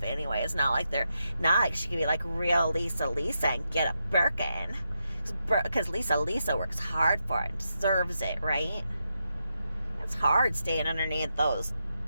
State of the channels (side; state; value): both; inverted; correlation -0.85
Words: anyway. It's not like she can be like real Lisa and get a Birkin, because Lisa works hard for it and deserves it, right? It's hard staying underneath those